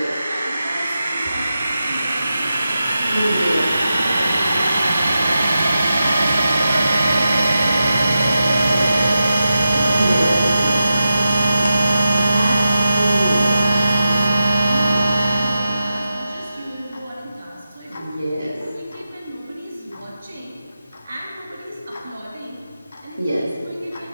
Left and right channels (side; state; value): both; inverted; correlation -0.90